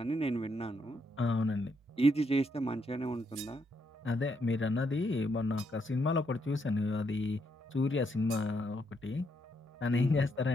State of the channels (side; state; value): both; normal; correlation 0.77